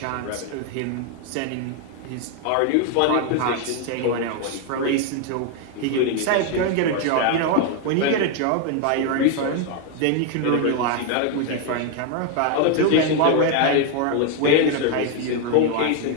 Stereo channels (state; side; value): different; both; correlation 0.01